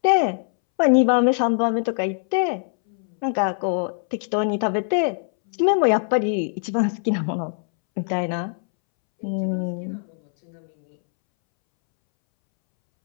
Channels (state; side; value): silent; right; 64 dB below the other